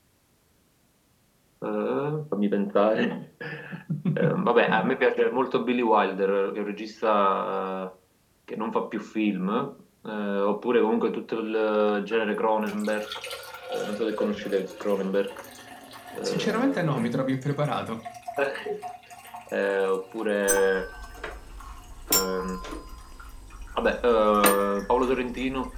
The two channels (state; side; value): identical; both; correlation 1.00